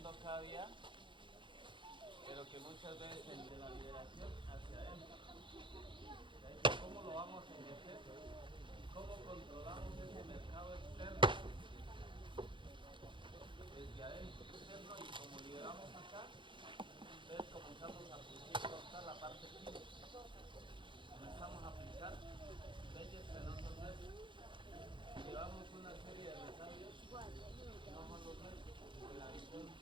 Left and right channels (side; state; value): left; late; 0.23 ms